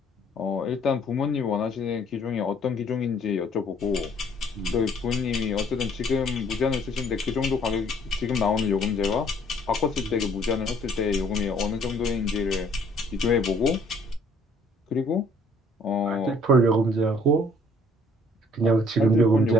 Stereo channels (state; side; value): normal; both; correlation 0.60